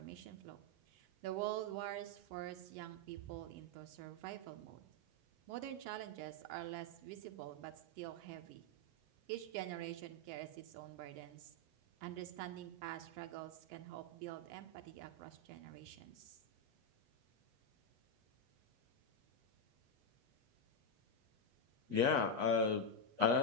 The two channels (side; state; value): left; late; 8.1 ms